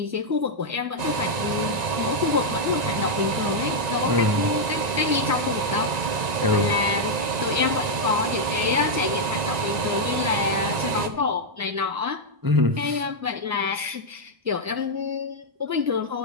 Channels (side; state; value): left; late; 1.9 ms